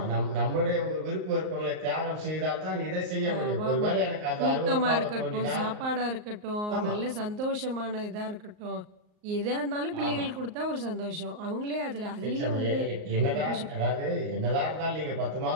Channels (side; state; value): left; late; 38 ms